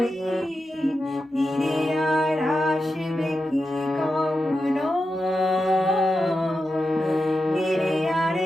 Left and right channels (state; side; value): normal; both; correlation 0.89